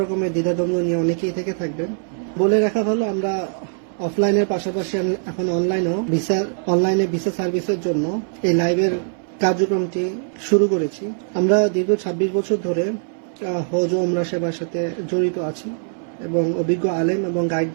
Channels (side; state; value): left; silent; 63 dB below the other